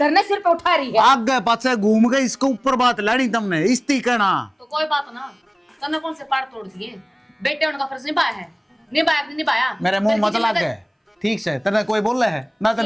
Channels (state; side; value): identical; both; correlation 1.00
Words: ने सिर पे उठा रही है। आगे पाछे घूम गए, इसके ऊपर बात लानी तुमने इस्ती कहना। तो कोई बात ना, तने कौन से पार तोड़ दिए, बेटे उनका फर्ज निभाया है, निभाया। मेरे मुंह मत लग गए ठीक से, तेने कोई बोले है ना,